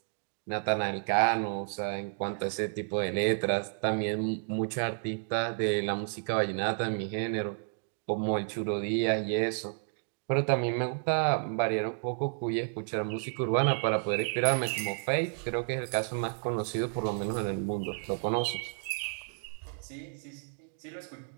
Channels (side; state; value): left; silent; 57 dB below the other